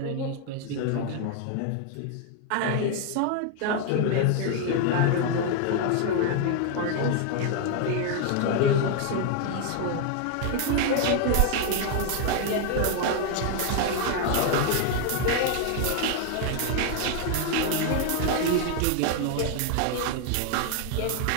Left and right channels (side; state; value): both; different; correlation 0.00